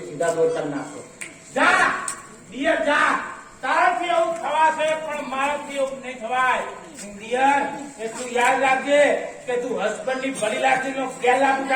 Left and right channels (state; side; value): identical; both; correlation 1.00